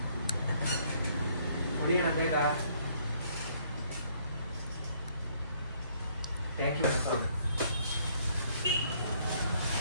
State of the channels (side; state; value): both; inverted; correlation -0.65